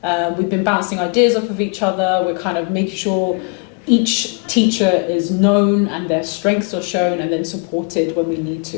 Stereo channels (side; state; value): right; quieter; 36.2 dB